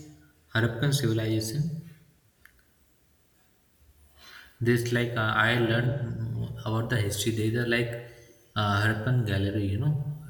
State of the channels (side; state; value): both; identical; correlation 1.00